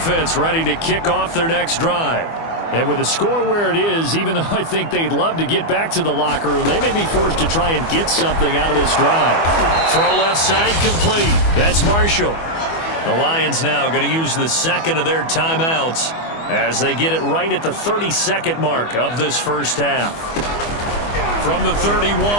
ready to kick off their next drive. And with the score where it is, even though I think they'd love to get back to the locker room, they may be forced to try and get something out of this drive. Throw left side complete. That's Marshall. The Lions now going to use the 2nd of their timeouts as they get it right at the 32nd mark of this first half. From the 31,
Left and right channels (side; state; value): right; late; 24 ms